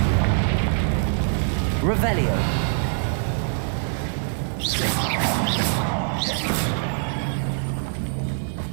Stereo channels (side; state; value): left; silent; digital silence